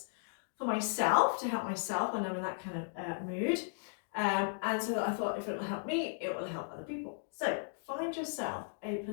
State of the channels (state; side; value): silent; right; digital silence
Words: for myself to help myself when I'm in that kind of mood, and so I thought if it will help me, it will help other people. So find yourself a